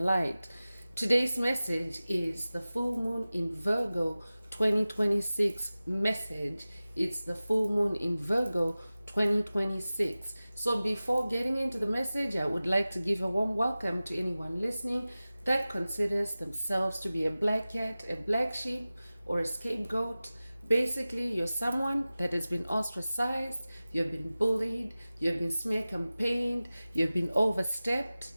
light. Today's message is the full moon in Virgo 2026 message. It's the full moon in Virgo 2026. So before getting into the message, I would like to give a warm welcome to anyone listening that considers themselves to be a black cat, a black sheep, or a scapegoat. Basically, you're someone that has been ostracized, you've been bullied, you've been smear campaigned, you've been overstepped,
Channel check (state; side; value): inverted; both; correlation -0.97